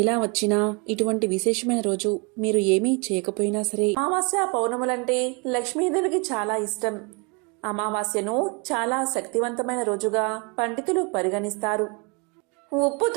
ఇలా వచ్చినా ఇటువంటి విశేషమైన రోజు మీరు ఏమీ చేయకపోయినా సరే, అమావాస్య పౌర్ణములంటే లక్ష్మీదేవికి చాలా ఇష్టం. అమావాస్యను చాలా శక్తివంతమైన రోజుగా పండితులు పరిగణిస్తారు.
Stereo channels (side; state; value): left; quieter; 31.3 dB